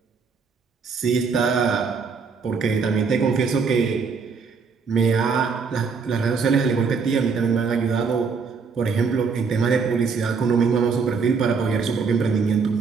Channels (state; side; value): quieter; left; 5.3 dB